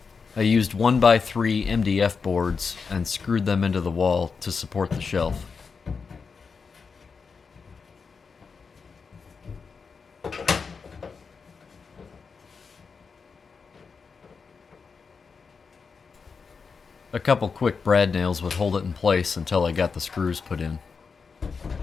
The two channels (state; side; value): quieter; right; 5.3 dB